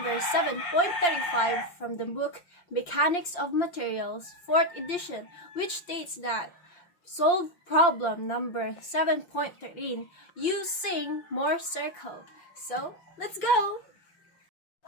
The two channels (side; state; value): right; late; 5.7 ms